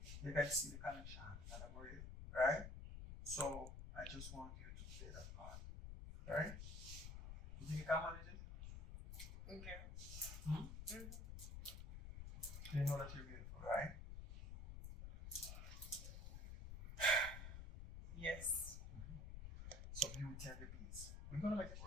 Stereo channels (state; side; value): noise; left; rumble, 8 dB below the sound